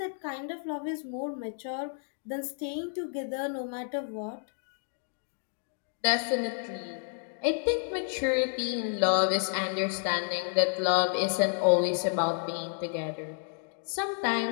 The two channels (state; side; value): silent; right; 57 dB below the other